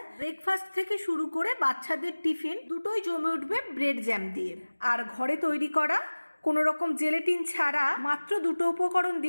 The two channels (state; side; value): inverted; both; correlation -1.00